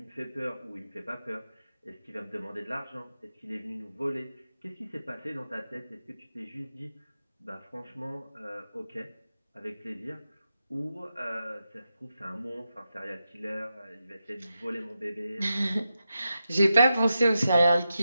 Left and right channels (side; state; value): both; inverted; correlation -0.89